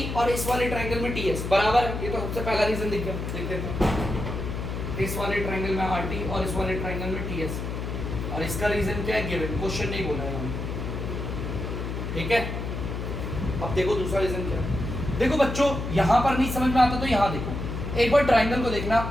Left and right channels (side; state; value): left; noise; hum, 4 dB below the sound